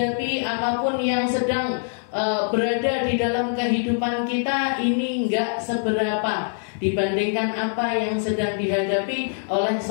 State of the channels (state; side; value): silent; right; 59 dB below the other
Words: apapun yang sedang berada di dalam kehidupan kita, ini enggak seberapa dibandingkan apa yang sedang dihadapi oleh